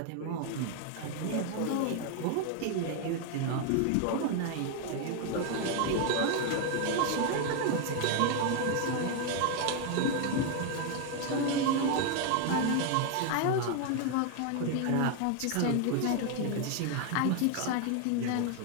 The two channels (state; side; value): different; both; correlation 0.01